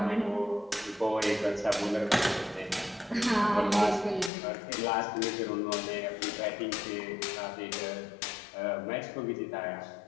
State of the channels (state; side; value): drops out; right; at 4.3 s